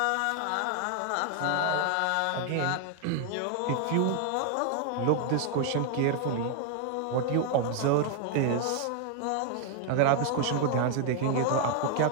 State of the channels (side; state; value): both; different; correlation 0.00